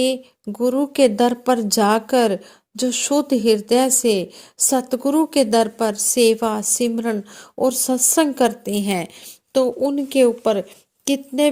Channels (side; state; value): both; identical; correlation 1.00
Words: गुरु के दर पर जाकर जो शुद्ध हृदय से सतगुरु के दर पर सेवा सिमरन और सत्संग करते हैं, तो उनके ऊपर कितने